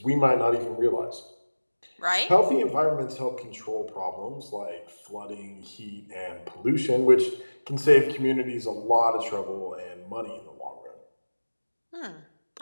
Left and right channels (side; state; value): both; inverted; correlation -1.00